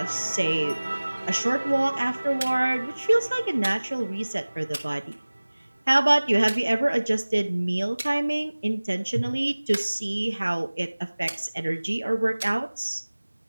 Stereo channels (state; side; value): inverted; both; correlation -1.00